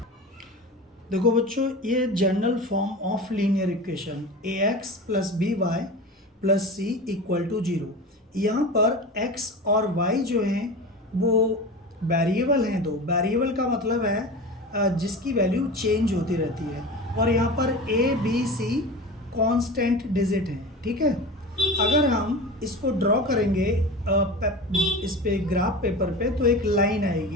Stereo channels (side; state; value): both; normal; correlation 0.31